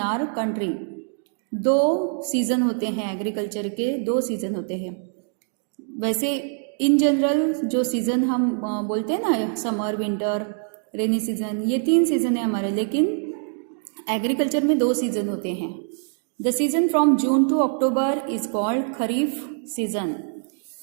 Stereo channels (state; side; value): silent; left; 63 dB below the other